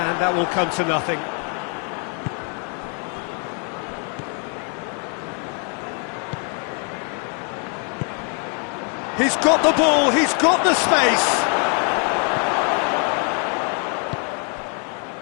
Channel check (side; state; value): right; quieter; 38.8 dB